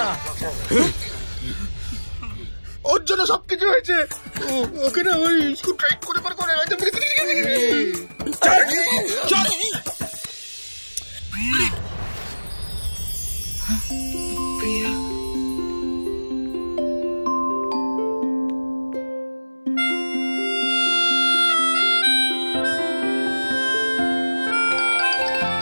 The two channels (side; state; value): both; inverted; correlation -1.00